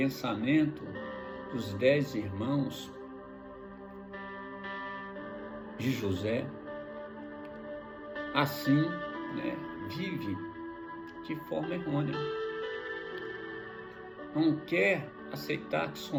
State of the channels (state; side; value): identical; both; correlation 1.00